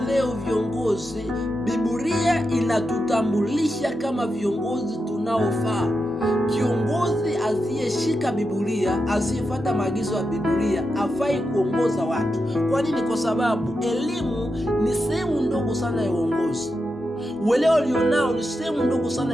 leo viongozi, Biblia inatutambulisha kama viongozi tunaofaa. Kiongozi asiyeshika Biblia, asiyefuata maagizo ya Biblia, hafai kuongoza watu. Kwa nini? Kwa sababu elimu ni sehemu ndogo sana ya uongozi. Uelewa ulionao ni sehemu ndogo sana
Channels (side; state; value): both; normal; correlation 0.88